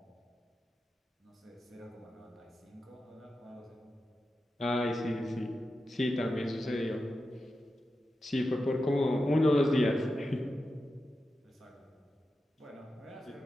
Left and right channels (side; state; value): both; normal; correlation 0.91